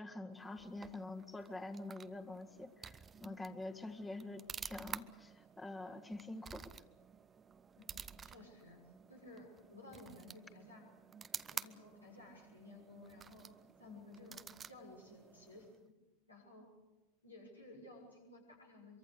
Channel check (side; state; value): both; normal; correlation 0.77